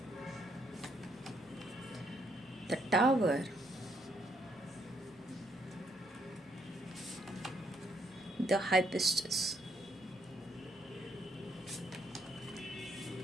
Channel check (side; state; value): both; normal; correlation 0.73